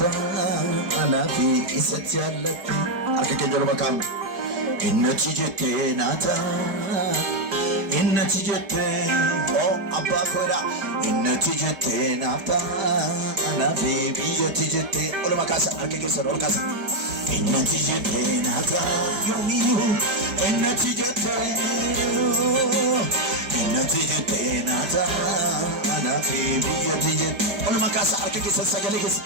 Anafi izzati allati Arke kenyol makam Innati jette nata Innati jette Oh abba koira Innati jette nata Anafi biyyati jette Ola makasa arke kenyol makasa Innati jette nata yomiyu Innati jette nata Anafi biyyati jette Ola makasa arke kenyol sagalikis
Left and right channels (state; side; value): late; left; 4.7 ms